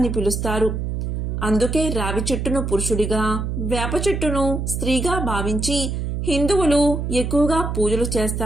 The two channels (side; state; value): right; noise; hum, 2 dB below the sound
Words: పిలుస్తారు. అందుకే రావి చెట్టును పురుషుడిగా, వేప చెట్టును స్త్రీగా భావించి హిందువులు ఎక్కువగా పూజలు